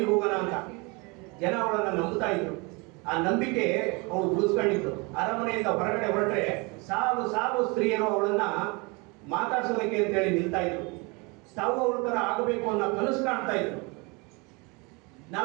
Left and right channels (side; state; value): left; quieter; 28.7 dB